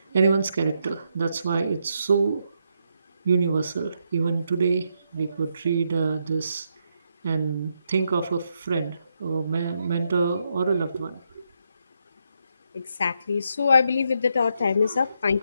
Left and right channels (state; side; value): inverted; both; correlation -0.80